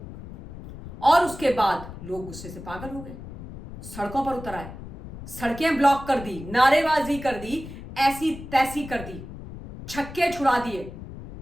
और उसके बाद लोग गुस्से से पागल हो गए, सड़कों पर उतर आए, सड़कें ब्लॉक कर दी, नारेबाजी कर दी, ऐसी तैसी कर दी, छक्के छुड़ा दिए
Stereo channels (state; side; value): noise; left; rumble, 13 dB below the sound